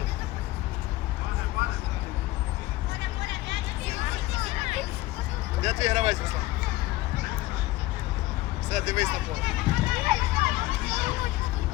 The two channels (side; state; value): right; quieter; 17.9 dB